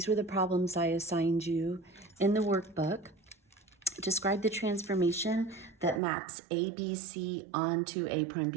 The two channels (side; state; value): left; drops out; at 6.0 s